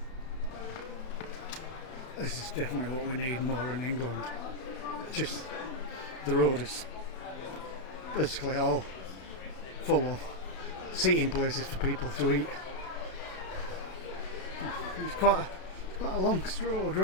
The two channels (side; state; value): right; late; 32 ms